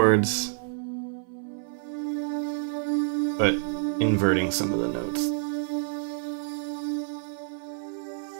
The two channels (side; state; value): left; silent; 56 dB below the other